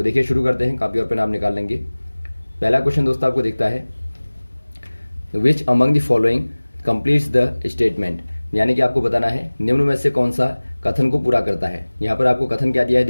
देखिए शुरू करते हैं, कॉपी और पेन आप निकाल लेंगे। पहला क्वेश्चन दोस्तों आपको दिखता है, which among the following completes the statement, यानी कि आपको बताना है निम्न में से कौन सा कथन को पूरा करता है। यहाँ पर आपको कथन क्या दिया है,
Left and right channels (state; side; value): inverted; both; correlation -1.00